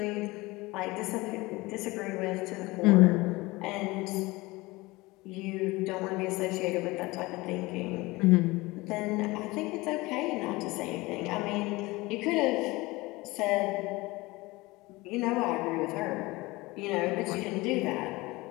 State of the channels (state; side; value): quieter; right; 21.8 dB